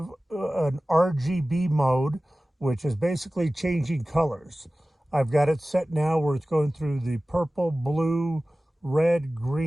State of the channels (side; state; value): both; normal; correlation 0.97